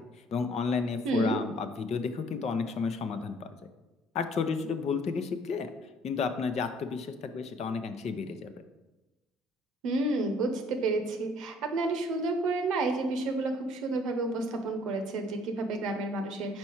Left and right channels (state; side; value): normal; both; correlation 0.58